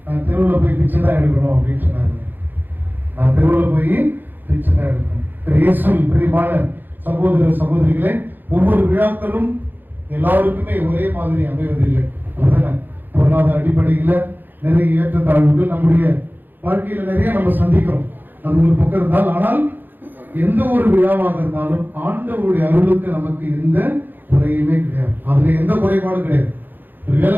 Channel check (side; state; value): left; late; 0.090 ms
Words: நான் தெருவில் போய் பிச்சை தான் எடுக்கணும் அப்படின்னு சொன்னாரு. நான் தெருவில் போய் பிச்சை தான் எடுக்கணும். இயேசுவில் பிரியமான சகோதர சகோதரிகளே, ஒவ்வொரு விழாக்களும் எல்லாருக்குமே ஒரே மாதிரி அமைவதில்லை. அப்படிதானே? பொருளாதார அடிப்படையில் நிறைய ஏற்றத்தாழ்வுகள் நம்முடைய வாழ்க்கையில நிறைய நம்ம சந்திக்கிறோம். அது ஒரு பக்கம் இருந்தால், ஆனால் எந்த ஒரு விழாவாக இருந்தாலும் ஆண்டவருடைய அருளுக்கு நமக்கு எந்த குறையுமே கிடையாது. அதுல எந்த குறைபாடும் கிடையாது.